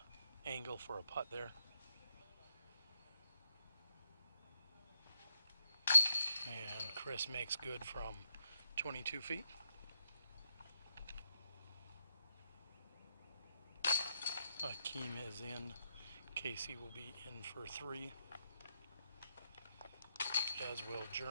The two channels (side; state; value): both; inverted; correlation -0.79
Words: angle for a putt there. And Chris makes good from 22 feet. Akeem is in. Casey will be in for 3. As will